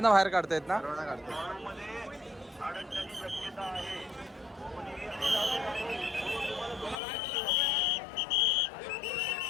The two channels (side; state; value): right; drops out; at 7.0 s